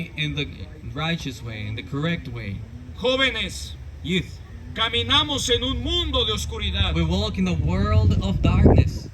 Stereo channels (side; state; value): both; identical; correlation 1.00